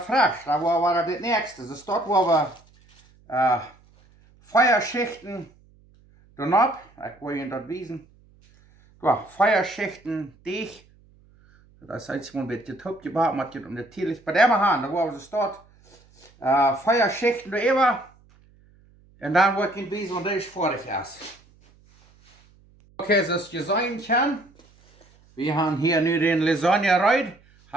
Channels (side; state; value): right; noise; hum, 30 dB below the sound